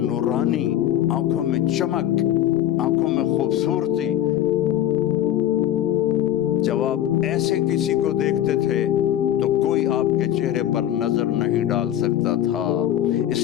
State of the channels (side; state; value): right; quieter; 11.8 dB